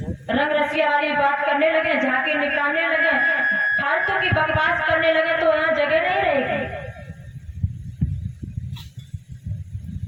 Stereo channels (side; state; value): both; identical; correlation 1.00